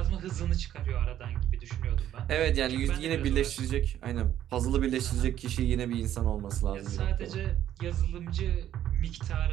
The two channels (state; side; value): quieter; left; 11.5 dB